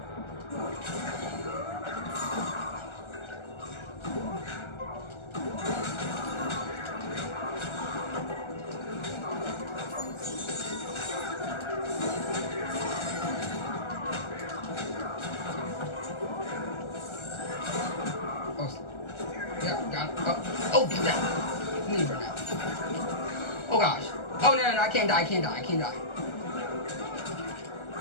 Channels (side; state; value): right; late; 1.3 ms